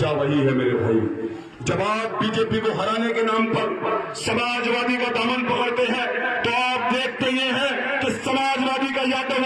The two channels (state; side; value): identical; both; correlation 1.00